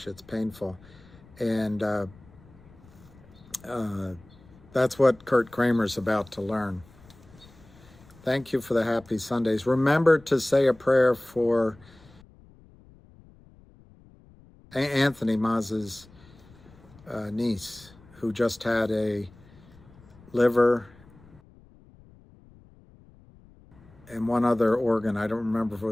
it's painful. And that's what Kurt Kramer's about to learn. Thank you for the happy Sundays. Remember to say a prayer for Anthony Maz's niece, who just had a liver and one other organ. I don't remember if it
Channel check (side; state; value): left; noise; rumble, 25 dB below the sound